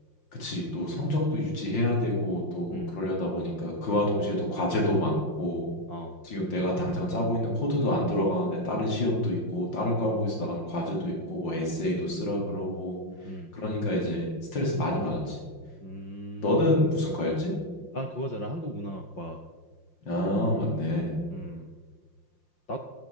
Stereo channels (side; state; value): right; late; 5.7 ms